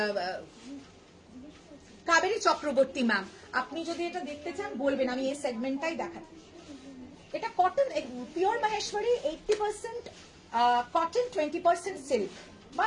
কাবেরী চক্রবর্তী ম্যাম, আপনি যদি এটা দেখতে চান বলবেন, আমি এই সেগমেন্টটাই দেখাই। এটা cotton pure Maheshwari 80% cotton 20% silk বা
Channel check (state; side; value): identical; both; correlation 1.00